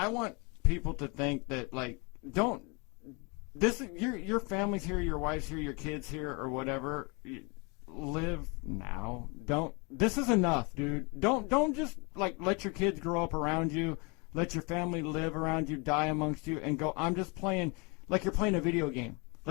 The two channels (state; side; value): quieter; right; 30.7 dB